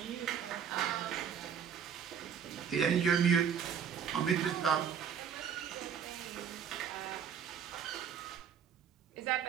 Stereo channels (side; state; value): left; quieter; 7.8 dB